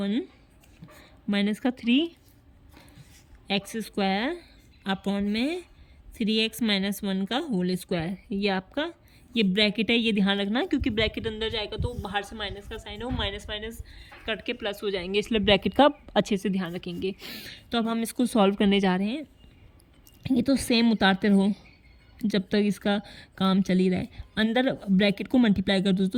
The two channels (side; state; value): both; identical; correlation 1.00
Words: माइनस का 3x² अपॉन में 3x-1 का होल स्क्वायर। ये आपका ये ब्रैकेट है, ये ध्यान रखना, क्योंकि ब्रैकेट अंदर जाएगा तो बाहर से माइनस का साइन हो, माइनस माइनस कट के प्लस हो जाएंगे, इसलिए ब्रैकेट का अच्छे से ध्यान रखेंगे। तो अब हम इसको सॉल्व करने जा रहे हैं। ये तो सेम उतारते रहो जब तक इसका काम चल ही रहा है। अंदर ब्रैकेट को मल्टीप्लाई कर दो